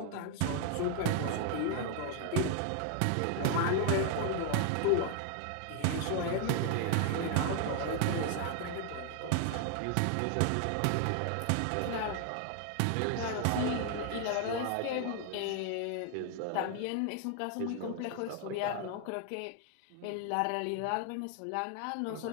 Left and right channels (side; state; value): both; different; correlation 0.00